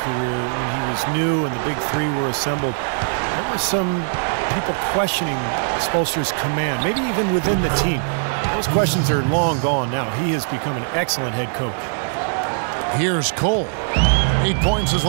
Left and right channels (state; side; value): silent; left; digital silence